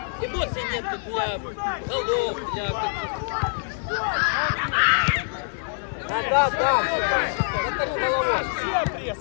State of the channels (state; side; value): silent; right; digital silence